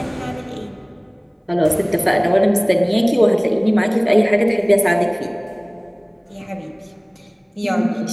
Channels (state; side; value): identical; both; correlation 1.00